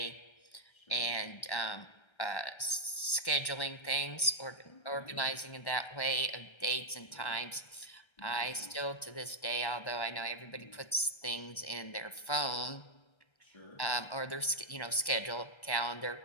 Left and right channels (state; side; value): late; right; 1.1 ms